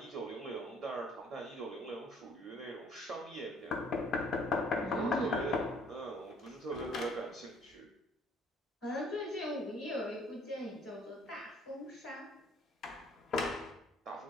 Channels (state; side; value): normal; both; correlation 0.59